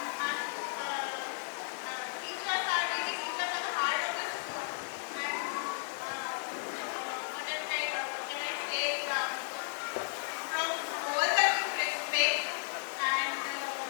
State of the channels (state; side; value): silent; right; 55 dB below the other